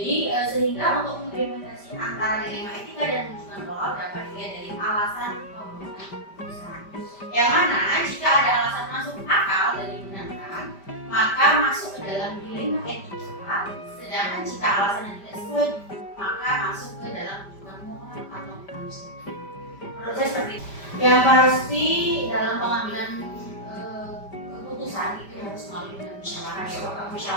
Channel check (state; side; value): late; right; 5.1 ms